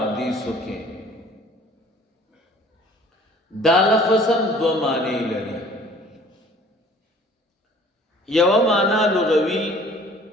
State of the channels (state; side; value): normal; both; correlation 0.51